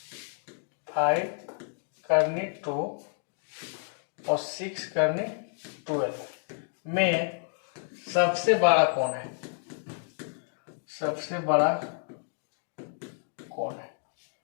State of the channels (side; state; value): right; silent; 58 dB below the other